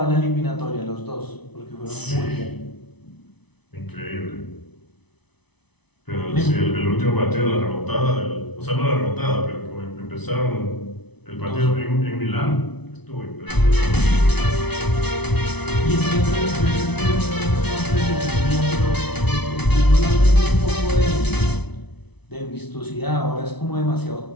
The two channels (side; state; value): right; late; 0.99 ms